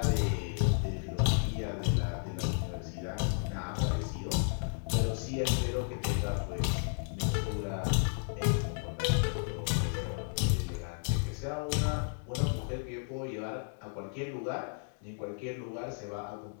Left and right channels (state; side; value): silent; right; digital silence